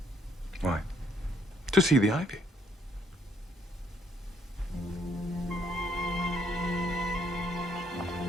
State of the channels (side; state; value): both; normal; correlation 0.69